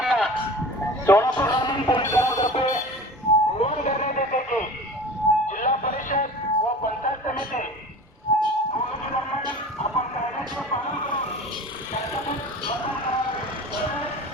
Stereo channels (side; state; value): both; normal; correlation 0.38